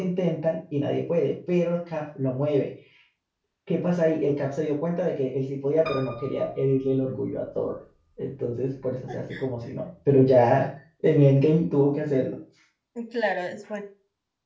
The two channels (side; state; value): both; identical; correlation 1.00